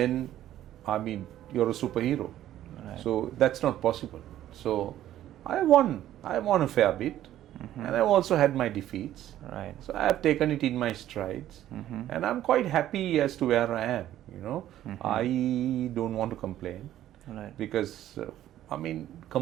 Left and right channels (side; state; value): left; quieter; 12.7 dB